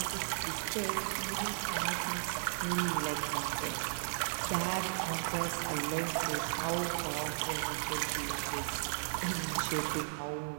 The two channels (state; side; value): silent; left; digital silence